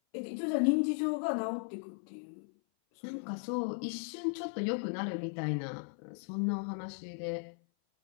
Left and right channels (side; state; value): right; silent; 53 dB below the other